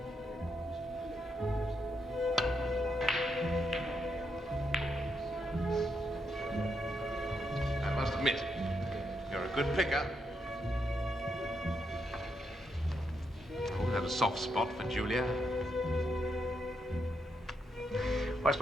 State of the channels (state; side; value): normal; both; correlation 0.80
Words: I must admit, you're a good picker. I've always had a soft spot for Julia. I